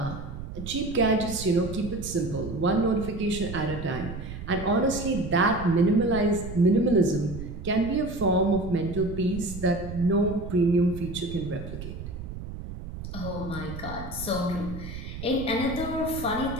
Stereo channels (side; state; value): right; noise; rumble, 9 dB below the sound